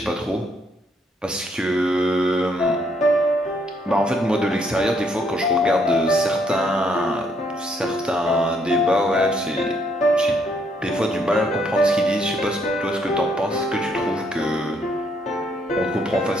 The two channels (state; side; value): normal; both; correlation 0.70